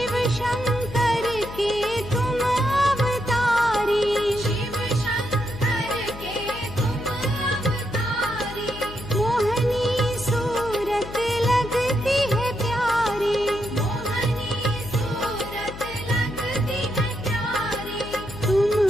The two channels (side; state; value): left; noise; hum, 13 dB below the sound